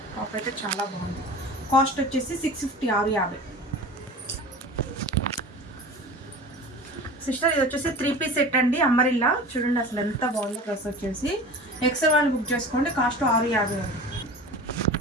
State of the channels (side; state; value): both; normal; correlation 0.36